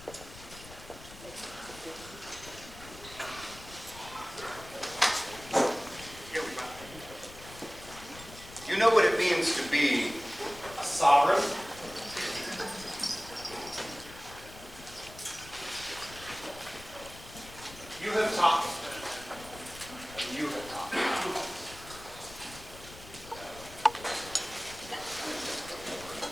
here we go. You know what it means to be A sovereign. You have taught me. And you have taught me.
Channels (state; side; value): noise; left; rumble, 17 dB below the sound